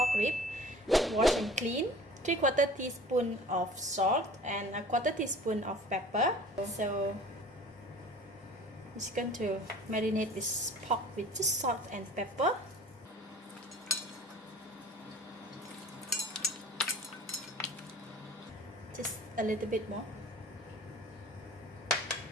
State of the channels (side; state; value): both; normal; correlation 0.44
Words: rib, washed and clean, 3/4 teaspoon of salt and 1/4 teaspoon of pepper. So it's going to marinate this pork with just salt and pepper. Just a little bit more.